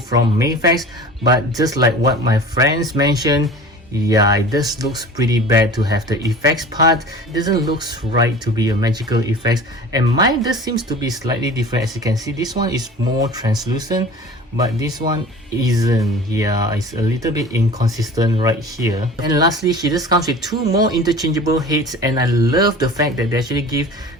Mafex, but just like what my friends mentioned, yeah, it just looks pretty bad to have the effects part. It doesn't look right to be a magical effects, and mine just seems to be slightly different. As you can see, this one is more translucent, but this one isn't. Yeah, it's a little bit inconsistent right here. And lastly, she just comes with two more interchangeable heads, and I love the fact that they actually give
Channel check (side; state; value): both; normal; correlation 0.40